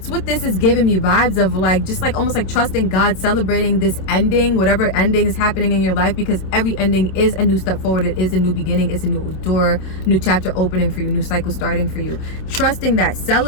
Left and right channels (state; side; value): late; right; 27 ms